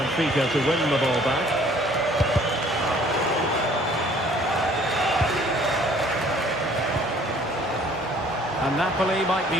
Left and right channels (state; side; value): normal; both; correlation 0.56